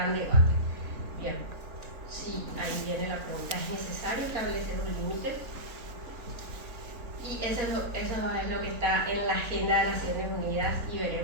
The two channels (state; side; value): late; left; 4.0 ms